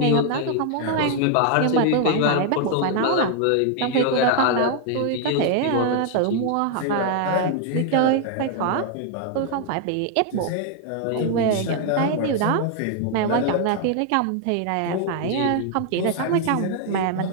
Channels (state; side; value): different; both; correlation 0.00